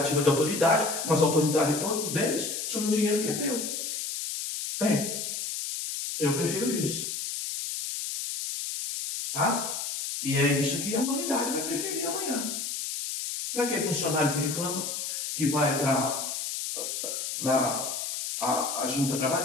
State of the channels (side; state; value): left; noise; hiss, 4 dB below the sound